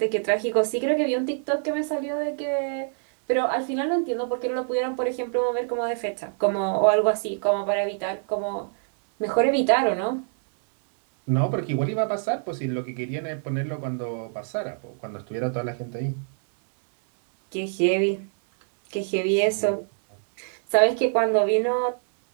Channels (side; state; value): left; silent; digital silence